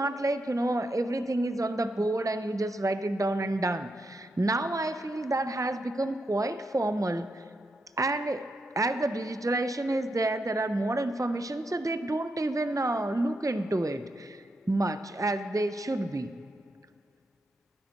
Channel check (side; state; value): both; normal; correlation 0.83